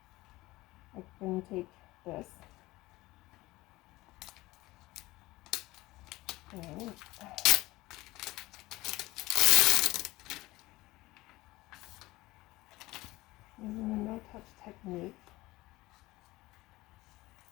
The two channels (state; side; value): quieter; right; 19.3 dB